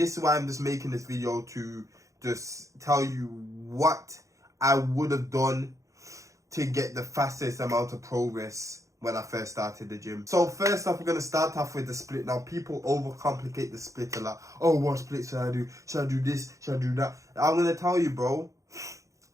is why I'm just making this video, to just tell you what I would have done to get the fastest amount of progress when I first started the gym. So first off, we're going to start off with the split. Now, people overcomplicate the split a lot. Oh, what split should I do? Should I do this? Should I do that? I'm going to tell you, bro.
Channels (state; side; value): late; left; 0.15 ms